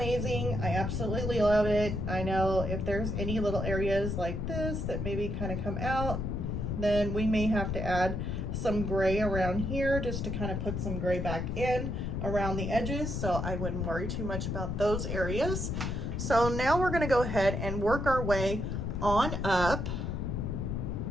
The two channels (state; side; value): noise; left; rumble, 2 dB below the sound